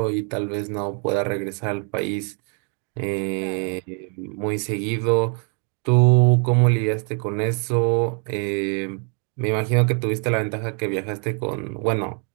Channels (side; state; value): left; quieter; 38.8 dB